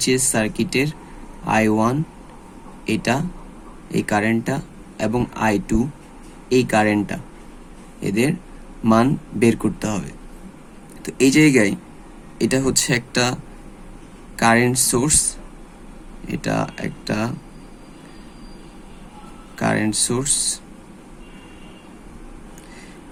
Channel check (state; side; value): identical; both; correlation 1.00